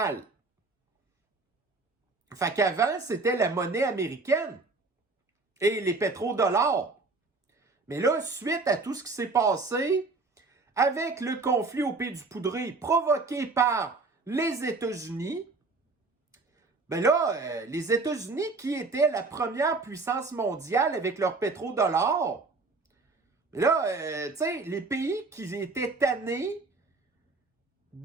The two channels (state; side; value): quieter; left; 3.8 dB